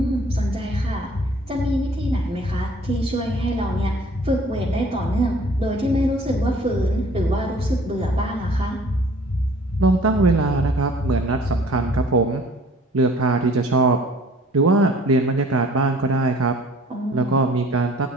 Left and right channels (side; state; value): both; normal; correlation 0.53